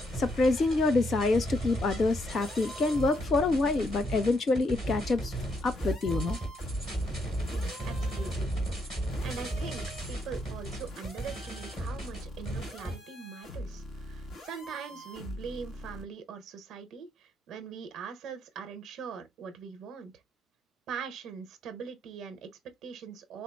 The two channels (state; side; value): normal; both; correlation 0.76